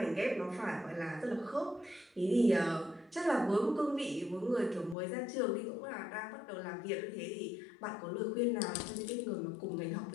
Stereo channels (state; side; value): drops out; right; at 5.0 s